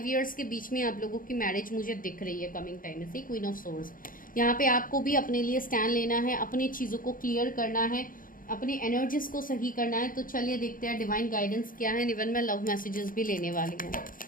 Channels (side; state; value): right; late; 0.40 ms